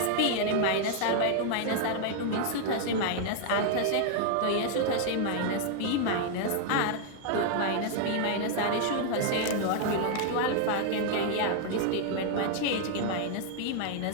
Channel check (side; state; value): both; different; correlation 0.00